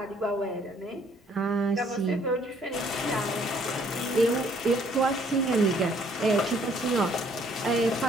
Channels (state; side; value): normal; both; correlation 0.63